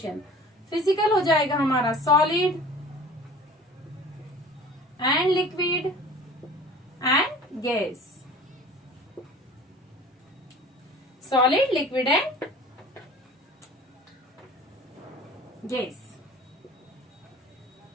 Physical हो जाएगा हमारा solid and liquid and gas. Solid, liquid and gas.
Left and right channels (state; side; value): normal; both; correlation 0.43